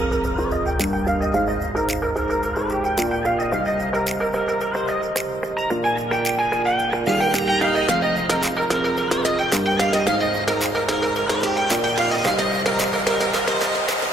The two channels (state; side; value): normal; both; correlation 0.75